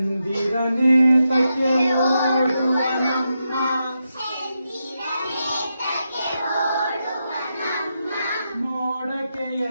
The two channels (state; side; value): inverted; both; correlation -0.86